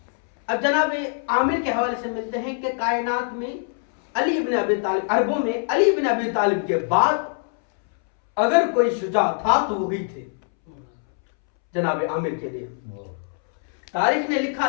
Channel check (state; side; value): silent; right; 63 dB below the other